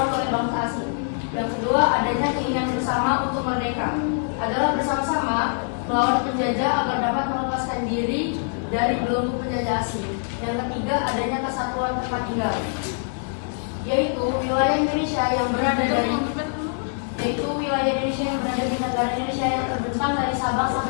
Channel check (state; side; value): silent; right; 63 dB below the other